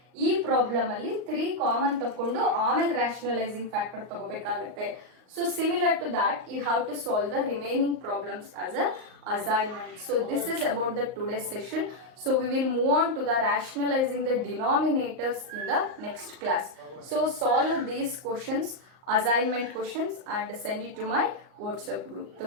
ಈ problem ಅಲ್ಲಿ 3 common ತಕೊಂಡು ಆಮೇಲೆ rationalizing factor ತಗೋಬೇಕಾಗುತ್ತೆ. So similar to that, you have to solve the remaining problems as a assignment. So this is about the today's session. So we will move on to the rationalizing the denominators in the next class. So solve these questions, assignment questions, and send it to my WhatsApp group.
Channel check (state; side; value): late; left; 38 ms